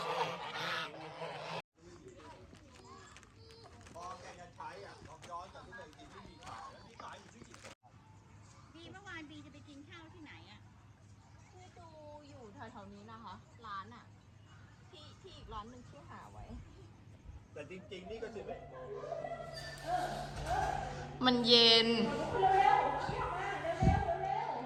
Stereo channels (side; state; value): both; identical; correlation 1.00